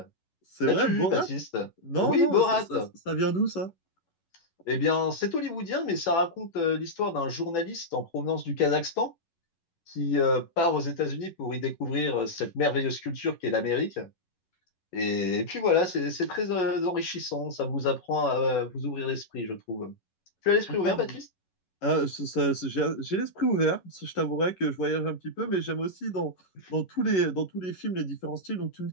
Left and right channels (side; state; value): right; late; 11 ms